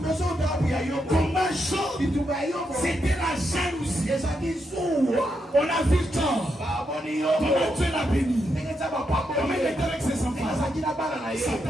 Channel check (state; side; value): normal; both; correlation 0.82